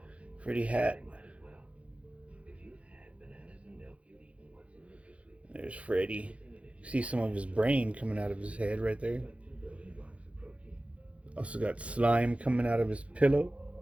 hat. There's Freddy. You see some of his brain coming out of his head right there. Also got slime coming out of his pillow.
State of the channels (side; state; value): left; late; 0.063 ms